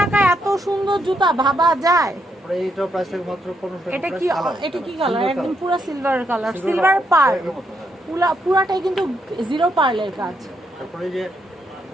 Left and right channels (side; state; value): both; normal; correlation 0.78